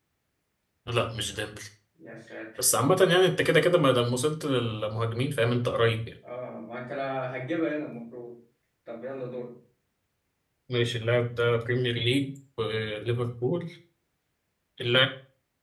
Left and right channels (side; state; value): both; identical; correlation 1.00